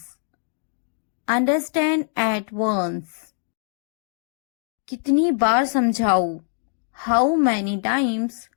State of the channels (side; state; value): right; silent; digital silence